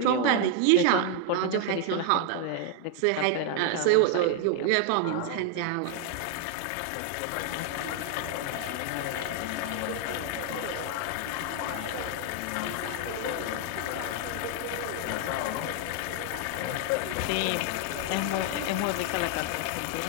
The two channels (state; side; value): different; both; correlation 0.00